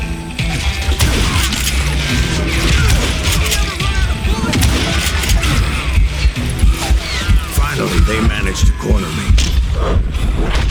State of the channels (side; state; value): both; identical; correlation 1.00